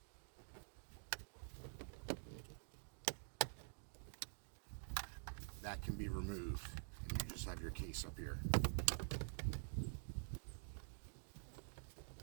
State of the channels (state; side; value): silent; left; digital silence